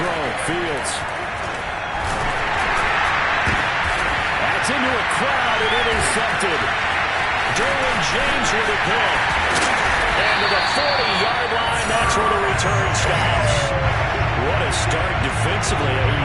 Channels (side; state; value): both; identical; correlation 1.00